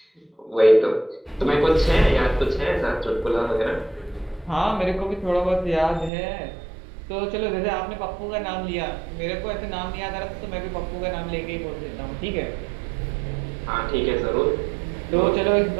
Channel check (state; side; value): drops out; left; at 6.1 s